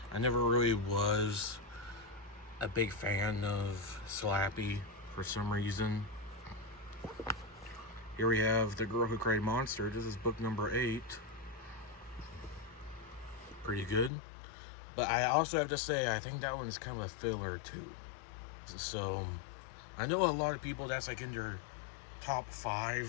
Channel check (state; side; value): drops out; right; at 14.1 s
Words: I never really was a big fan of Slappy for some reason. Here we have The Girl Who Cried Monster. This is book number 8. Pretty good. But I also have to say, I think that one's kind of a filler too. So, I know a lot of people that's like in their top